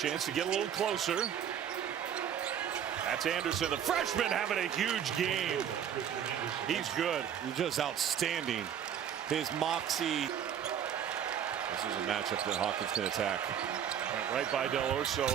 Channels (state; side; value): quieter; left; 9.1 dB